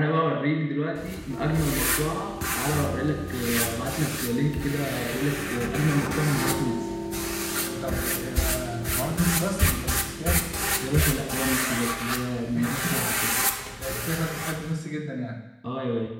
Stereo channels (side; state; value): both; identical; correlation 1.00